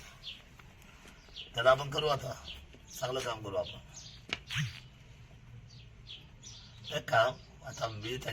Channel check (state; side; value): identical; both; correlation 1.00